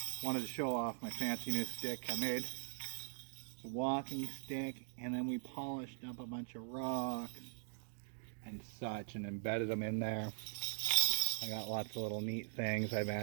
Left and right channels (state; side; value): silent; left; digital silence